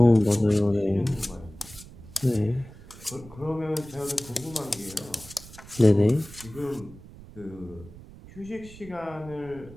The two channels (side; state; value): right; noise; rumble, 18 dB below the sound